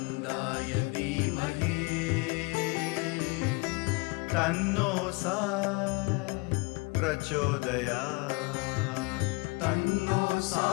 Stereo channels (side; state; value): right; quieter; 27.1 dB